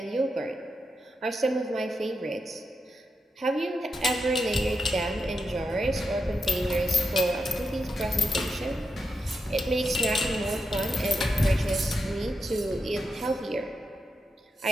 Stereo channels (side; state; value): both; normal; correlation 0.86